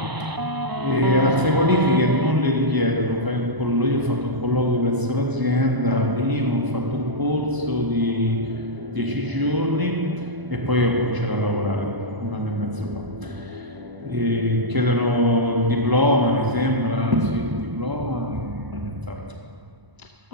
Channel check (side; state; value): left; late; 1.0 ms